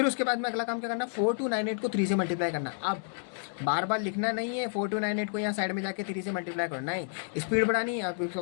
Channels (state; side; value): silent; right; digital silence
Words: उसके बाद में अगला काम क्या करना, 4298 को 3 से मल्टीप्लाई करना। अब बार बार लिखना नहीं है 4298 को यहाँ साइड में जाके 3 से मल्टीप्लाई करना है, स्पीड बढ़ानी है।